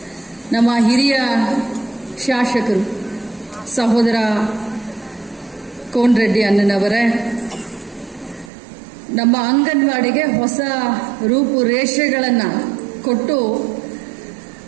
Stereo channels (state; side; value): drops out; left; at 8.5 s